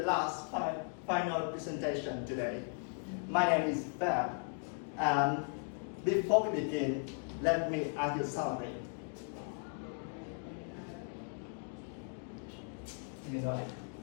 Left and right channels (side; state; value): right; silent; 53 dB below the other